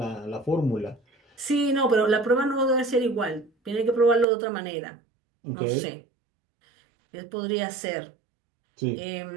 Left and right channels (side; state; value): left; drops out; at 4.2 s